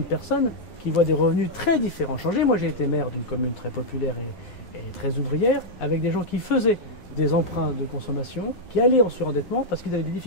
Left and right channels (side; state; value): right; late; 11 ms